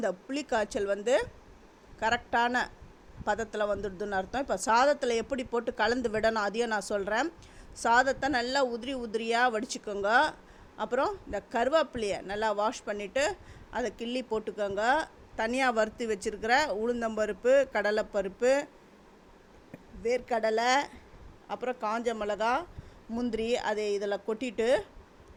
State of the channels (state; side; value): identical; both; correlation 1.00